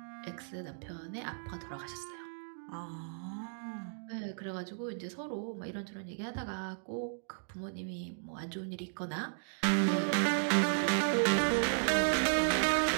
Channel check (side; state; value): left; silent; digital silence